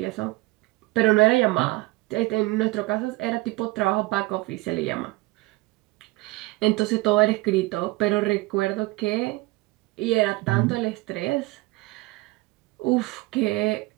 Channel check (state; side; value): quieter; left; 21.5 dB